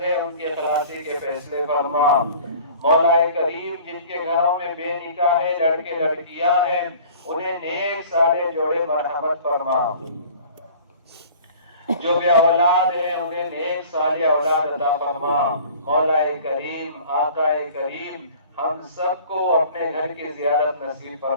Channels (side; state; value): both; inverted; correlation -0.47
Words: ہیں ان کی خلاصی کے فیصلے فرما۔ مولا کریم جن کے گھروں میں بے نکاح ہے، لڑکے لڑکیاں ہیں، انہیں نیک صالح جوڑے مرحمت فرما، جو بے اولاد ہیں انہیں نیک صالح اولاد عطا فرما۔ مولا کریم، آقا کریم، ہم سب کو اپنے گھر کی زیارت نصیب